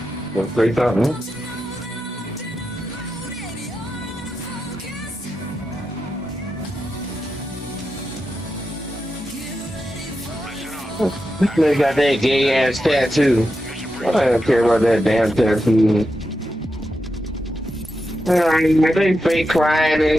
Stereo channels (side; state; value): both; normal; correlation 0.88